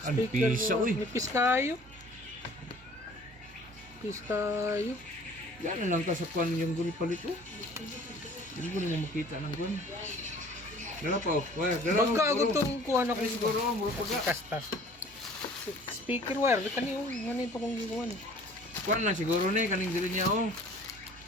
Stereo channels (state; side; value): normal; both; correlation 0.50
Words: Ang Speaker pisa mo, uy. Nipis kayo. Nipis kayo. Yan lang ka sa kwan yung guni palit oh. Hindi ko na makita ng gun. Dala pa oh. Wire, dala. Baga ako itong kuha na ko. Ay siguro mo paga. Kastas. Speaker wire. Kani yung ano ito kong ginawa ni. Kwan lang siguro ni kaning dili niya oh.